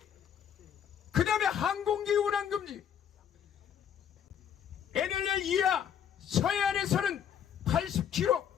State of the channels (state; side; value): quieter; right; 8.7 dB